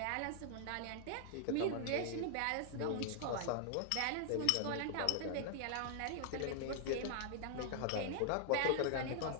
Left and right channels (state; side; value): different; both; correlation 0.00